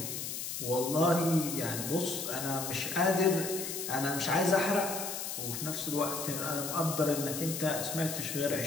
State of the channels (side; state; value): left; noise; hiss, 5 dB below the sound